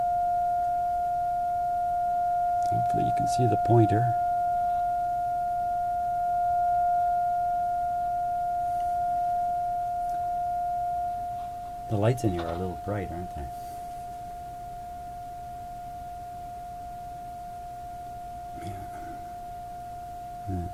Hopefully you can see the pointer. The lights in here are a little bright, aren't they?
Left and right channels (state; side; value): identical; both; correlation 1.00